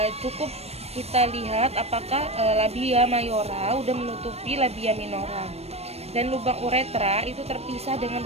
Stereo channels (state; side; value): late; left; 0.30 ms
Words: cukup kita lihat apakah labia mayora udah menutupi labia minora, dan lubang uretra itu terpisah dengan